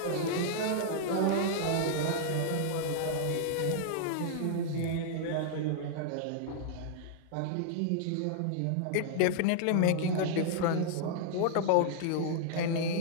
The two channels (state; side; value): different; both; correlation -0.01